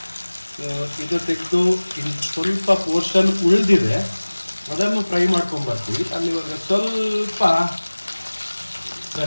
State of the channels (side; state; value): both; inverted; correlation -1.00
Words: ಸೊ ಇದು ತೆಗೆದು ಇನ್ನು ಸ್ವಲ್ಪ ಪೋರ್ಷನ್ ಉಳಿದಿದೆ, ಅದನ್ನು ಫ್ರೈ ಮಾಡ್ಕೊಂಬರ್ತೀವಿ. ಅಲ್ಲಿವರೆಗೆ ಸ್ವಲ್ಪ